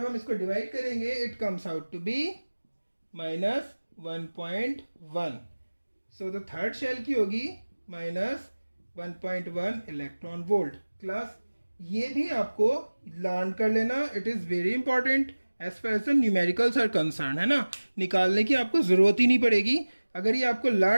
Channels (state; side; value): inverted; both; correlation -1.00